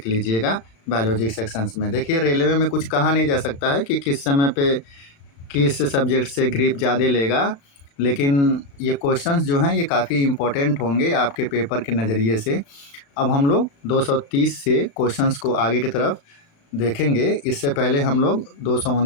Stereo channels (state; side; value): late; right; 36 ms